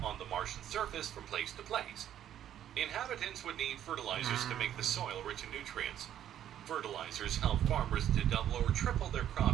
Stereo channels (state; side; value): quieter; left; 10.9 dB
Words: on the Martian surface from place to place. Inhabitants would need fertilizers to make the soil rich in nutrients. Fertilizers help farmers to double or triple their